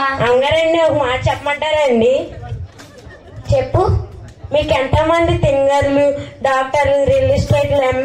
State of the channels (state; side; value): identical; both; correlation 1.00